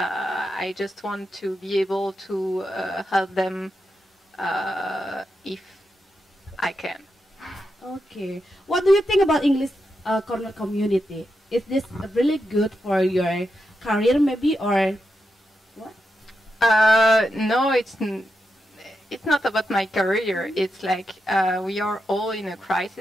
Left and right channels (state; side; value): normal; both; correlation 0.86